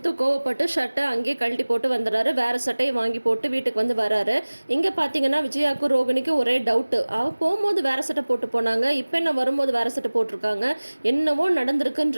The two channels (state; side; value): inverted; both; correlation -1.00